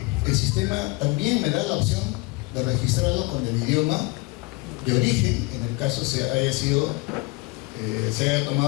el sistema también me da la opción de registrarlo con el idioma de origen, en el caso se haya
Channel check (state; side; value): quieter; right; 23.9 dB